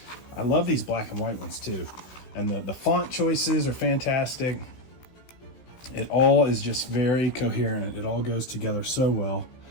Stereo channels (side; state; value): right; late; 16 ms